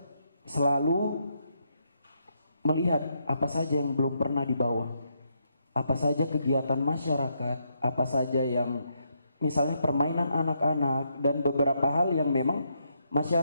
selalu melihat apa saja yang belum pernah dibawa, apa saja kegiatan masyarakat, apa saja yang misalnya permainan anak-anak dan beberapa hal yang memang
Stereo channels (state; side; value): inverted; both; correlation -0.78